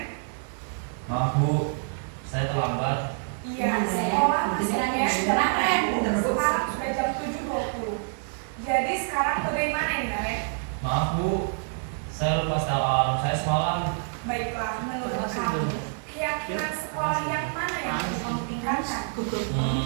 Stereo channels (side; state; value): left; silent; 60 dB below the other